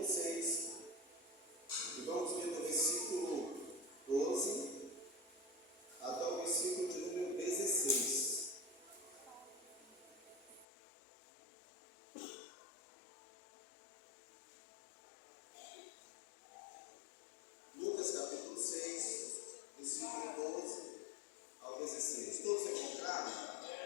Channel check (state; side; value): drops out; right; at 10.7 s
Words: 6. E vamos ler do versículo 12 até o versículo de número 16. Lucas capítulo 6, versículo 12 ao 16. Todos encontraram?